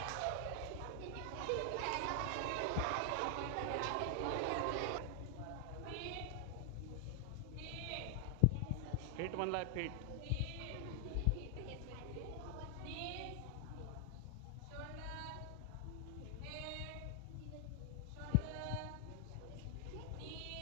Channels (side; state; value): both; different; correlation 0.00